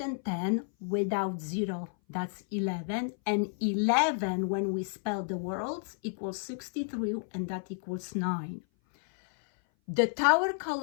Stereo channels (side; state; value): right; silent; 56 dB below the other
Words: without 0, that's 11. And 11, when we spell the worlds, equals 63, and that equals 9. The tower